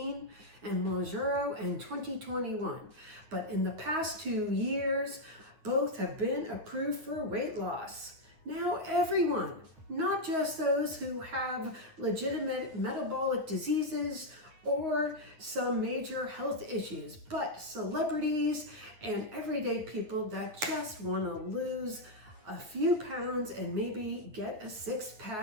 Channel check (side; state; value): left; late; 9.5 ms